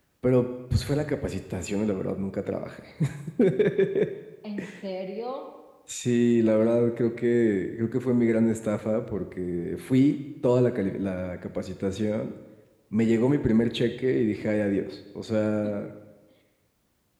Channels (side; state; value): both; identical; correlation 1.00